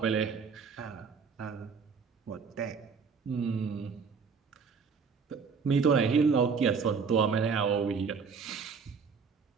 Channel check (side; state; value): left; quieter; 5.6 dB